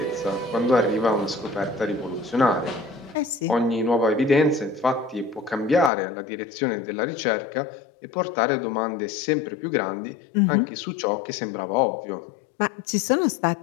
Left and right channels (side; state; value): right; drops out; at 5.9 s